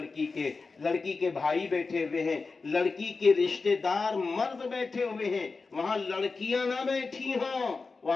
کے بھائی بیٹھے ہوئے ہیں، لڑکی کے رشتہ دار مرد بیٹھے ہوئے ہیں، وہاں لڑکیاں نہ بیٹھی ہوں،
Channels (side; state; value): right; quieter; 4.2 dB